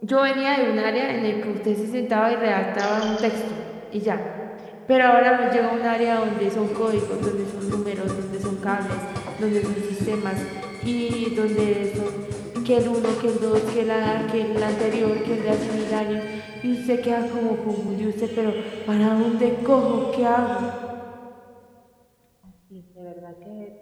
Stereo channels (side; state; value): both; identical; correlation 1.00